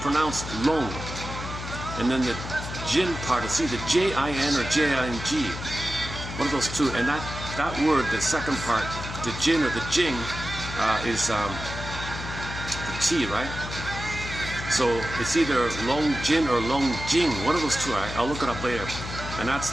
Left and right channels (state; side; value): noise; left; hum, 8 dB below the sound